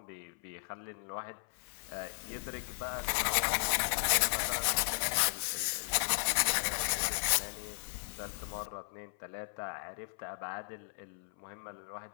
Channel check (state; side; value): silent; right; 54 dB below the other